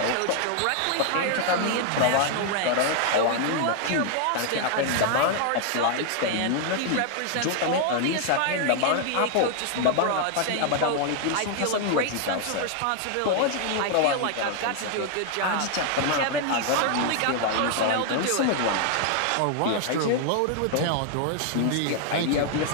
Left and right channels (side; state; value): both; different; correlation 0.00